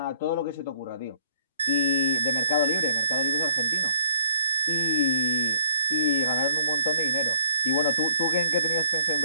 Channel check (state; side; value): inverted; both; correlation -0.58